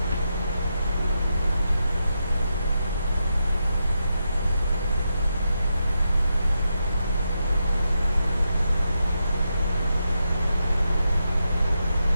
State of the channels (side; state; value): both; inverted; correlation -0.85